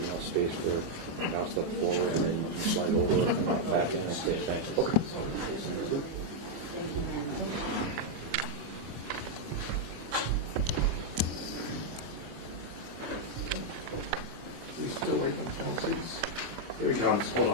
space for now step forward, and then you can slide over and out back in and say thanks. Okay. Here he comes. Hold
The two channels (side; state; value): left; late; 24 ms